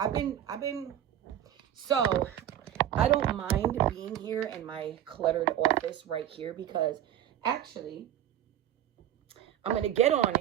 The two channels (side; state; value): left; quieter; 11.4 dB